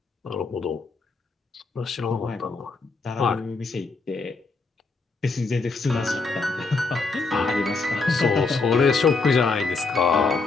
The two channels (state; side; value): quieter; right; 4.1 dB